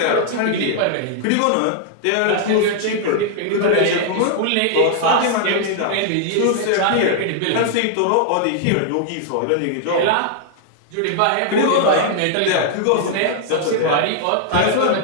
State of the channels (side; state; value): both; different; correlation -0.01